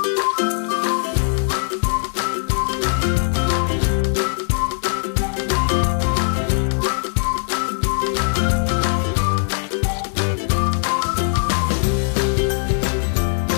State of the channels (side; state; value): right; silent; digital silence